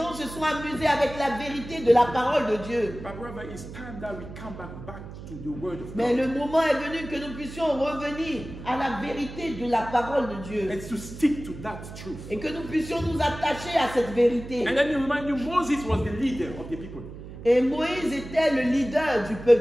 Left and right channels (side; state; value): right; noise; hum, 13 dB below the sound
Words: se sont amusés avec la vérité de la parole de Dieu. But brother, it's time that we come back to the word of Mais God. le moment est venu que nous puissions revenir à la vérité de la parole de Dieu. And to stick to that truth. Et que nous puissions nous attacher à cette vérité. And let me remind you, Moses was the leader of the people. Et Moïse était le leader du